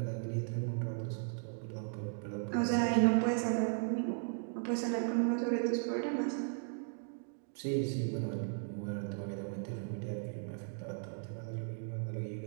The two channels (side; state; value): left; silent; 53 dB below the other